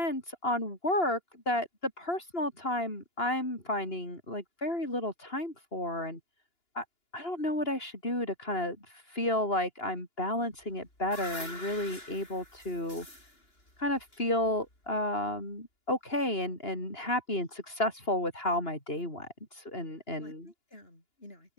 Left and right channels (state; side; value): late; right; 2.9 ms